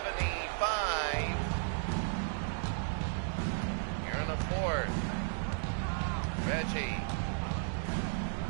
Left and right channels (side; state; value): left; silent; digital silence